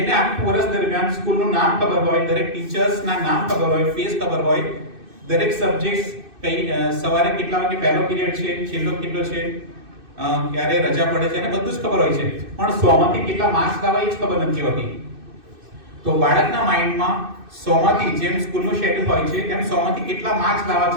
આખું વર્ષ દરમિયાન સ્કૂલનું નામ ખબર હોય, દરેક ટીચર્સના નામ ખબર હોય, ફેસ ખબર હોય, દરેક સબ્જેક્ટ્સ કઈ સવારે કેટલા વાગે પહેલો પીરિયડ છે, છેલ્લો કેટલો છે, ક્યારે રજા પડે છે, એને બધું જ ખબર હોય છે, પણ 100 માંથી કેટલા માર્ક્સ લાવવા એ જ ખબર નથી હોતી. તો બાળકના માઇન્ડમાં 100 માંથી, જેમ સ્કૂલનું શેડ્યુલ હોય છે, એમ 100 માંથી કેટલા માર્ક્સ લાવવા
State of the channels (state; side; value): late; left; 2.6 ms